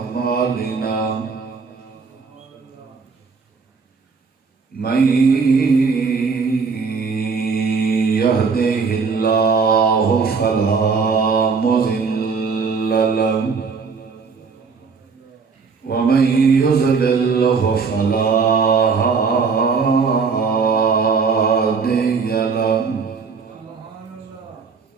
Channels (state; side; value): quieter; left; 5.2 dB